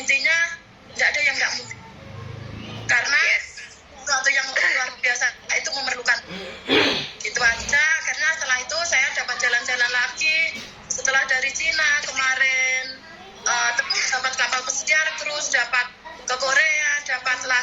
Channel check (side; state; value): both; identical; correlation 1.00